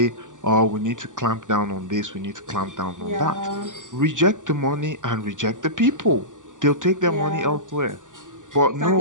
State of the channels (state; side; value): late; left; 0.87 ms